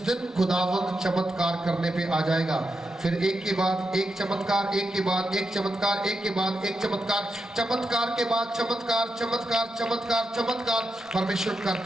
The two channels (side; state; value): both; normal; correlation 0.86